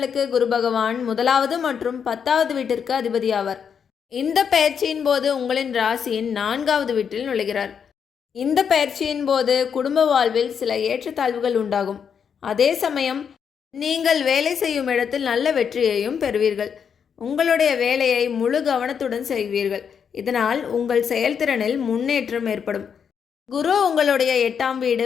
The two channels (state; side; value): quieter; right; 7.2 dB